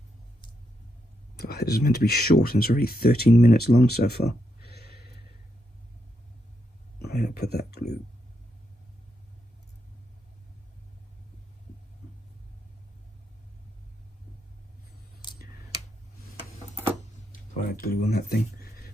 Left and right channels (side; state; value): both; normal; correlation 0.82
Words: Oh, this is meant to be short, and it's already 13 minutes long so far. I'm going to put that glue. I had glue on that thing.